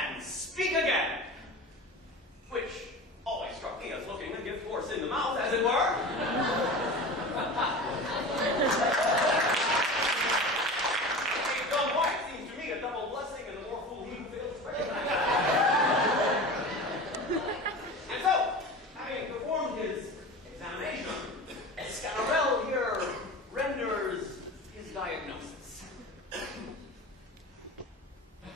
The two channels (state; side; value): normal; both; correlation 0.33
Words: speak again, which always struck me as looking a gift horse in the mouth, as it were. A dumb wife seems to me a double blessing, and the more fool he who fails to pray. And so, having performed his examination, Scanarelle here renders his diagnosis.